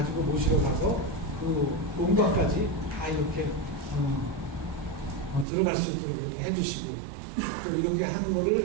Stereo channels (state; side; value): drops out; left; at 5.5 s